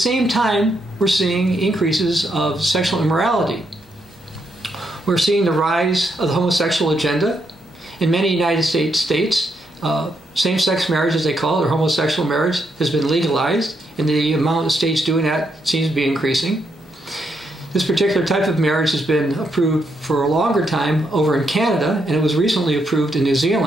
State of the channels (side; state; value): both; normal; correlation 0.79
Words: time we're seeing increases of sexual immorality. We're seeing the rise of the homosexual agenda. In many United States states, same-sex marriage, as they call it, or homosexual marriage, has been legalized, and the amount of states doing that seems to be increasing. This particular type of marriage has been approved for a longer time over in Canada, and it was recently approved in New